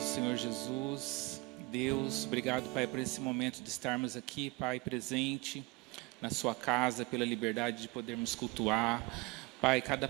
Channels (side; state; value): left; quieter; 24.9 dB